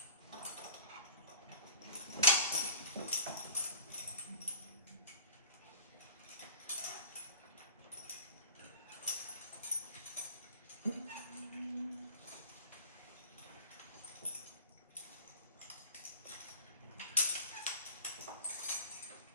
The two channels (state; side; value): inverted; both; correlation -0.41